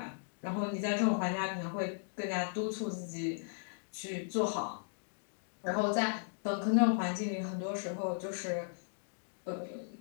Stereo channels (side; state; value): right; silent; digital silence